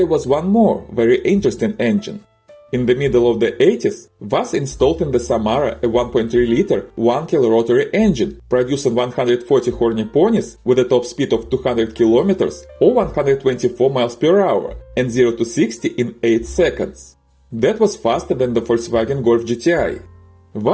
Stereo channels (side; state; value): both; identical; correlation 1.00